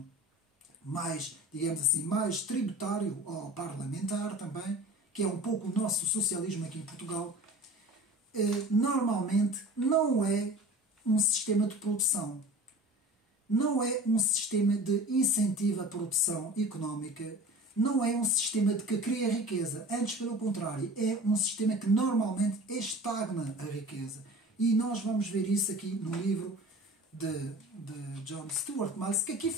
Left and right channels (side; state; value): both; normal; correlation 0.40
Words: mais, digamos assim, mais tributário ou parlamentar também, que é um pouco o nosso socialismo aqui em Portugal, normalmente não é um sistema de produção. Não é um sistema de incentivo à produção económica, não é um sistema de que cria riqueza. Antes, pelo contrário, é um sistema que normalmente estagna a riqueza. E nós vamos ver isso aqui no livro de John Stuart Mill, que aqui